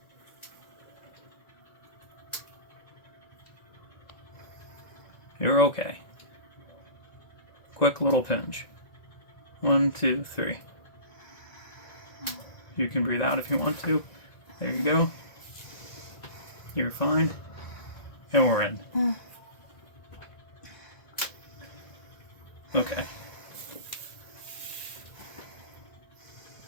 You're okay. Quick little pinch. 1, 2, 3. You can breathe out if you want to. There you go. You're fine. And we're in. Okay.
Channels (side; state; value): right; late; 1.9 ms